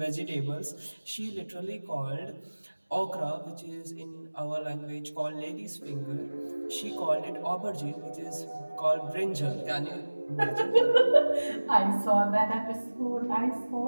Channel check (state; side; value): inverted; both; correlation -1.00